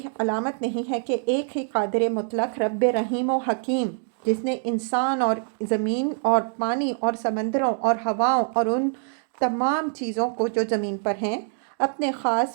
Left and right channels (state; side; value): silent; left; 62 dB below the other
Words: علامت نہیں ہے کہ ایک ہی قادر مطلق رب رحیم و حکیم، جس نے انسان اور زمین اور پانی اور سمندروں اور ہواؤں اور ان تمام چیزوں کو جو زمین پر ہیں اپنے